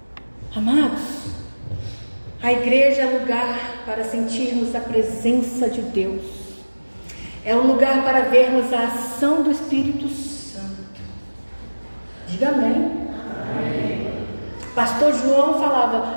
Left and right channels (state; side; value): inverted; both; correlation -1.00